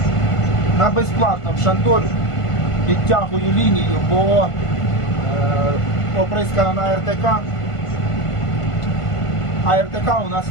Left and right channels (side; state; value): right; late; 1.5 ms